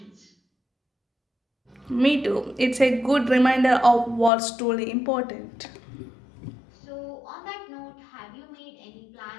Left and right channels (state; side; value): drops out; right; at 4.3 s